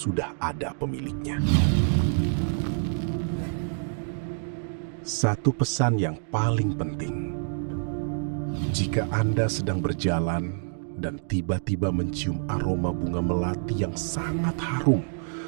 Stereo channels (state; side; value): silent; left; digital silence